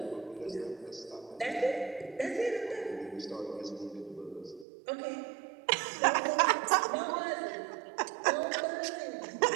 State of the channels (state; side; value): drops out; left; at 4.7 s